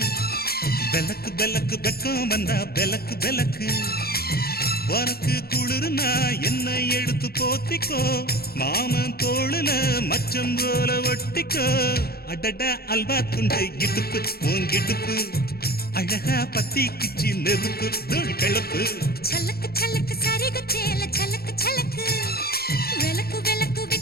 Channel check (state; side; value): late; right; 0.45 ms